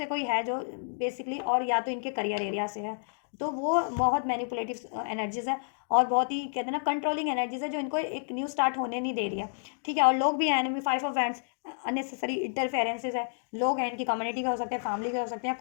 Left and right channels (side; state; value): right; silent; digital silence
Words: कोई है जो बेसिकली, और या तो इनके करियर एरिया से है, तो वो बहुत मैनिपुलेटिव एनर्जीज है, और बहुत ही कहते हैं ना कंट्रोलिंग एनर्जीज है, जो इनको एक न्यू स्टार्ट होने नहीं दे रही है, ठीक है, और लोग भी हैं enemy, 5 of wands, unnecessary interferences है, लोग हैं इनकी कम्युनिटी के हो सकते हैं, फैमिली के हो सकते हैं,